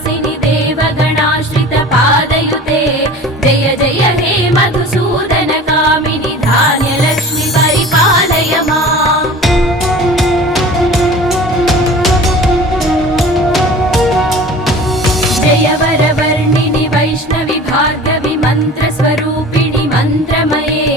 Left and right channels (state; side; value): normal; both; correlation 0.41